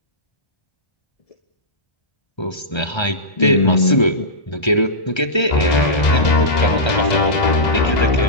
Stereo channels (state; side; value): late; right; 1.3 ms